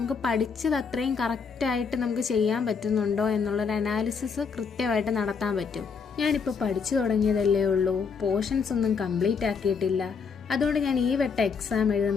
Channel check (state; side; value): quieter; right; 5.7 dB